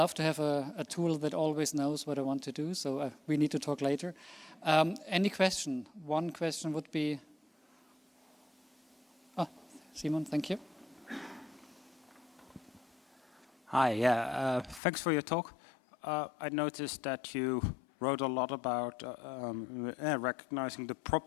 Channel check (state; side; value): drops out; right; at 14.8 s